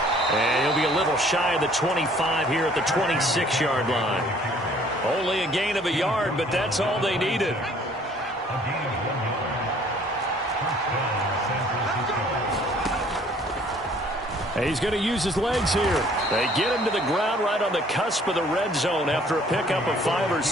And he'll be a little shy of the 25 here at the 26-yard line. Only a gain of a yard, but that's all they needed. And he's going to use his legs here. They get him to the ground right on the cusp of the red zone after a pickup of 5 or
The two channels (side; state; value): both; normal; correlation 0.57